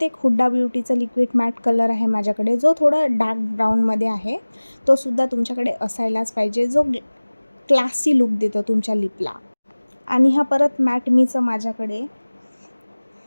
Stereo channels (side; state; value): both; inverted; correlation -1.00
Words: एक हुडा ब्युटीचा लिक्विड मॅट कलर आहे माझ्याकडे, जो थोडा डार्क ब्राऊनमध्ये आहे. तो सुद्धा तुमच्याकडे असायलाच पाहिजे, जो क्लासी लुक देतो तुमच्या लिपला. आणि हा परत मॅटमीचं माझ्याकडे